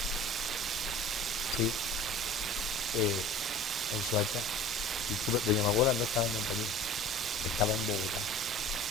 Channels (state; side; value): normal; both; correlation 0.42